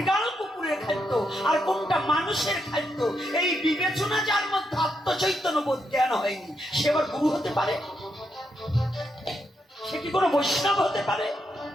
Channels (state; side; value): normal; both; correlation 0.81